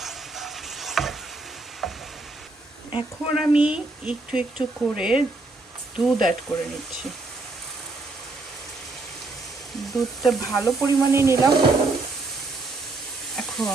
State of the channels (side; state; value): left; quieter; 3.3 dB